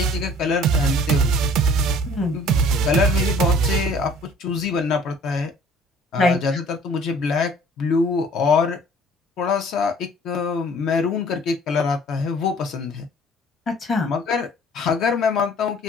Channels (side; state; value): both; normal; correlation 0.53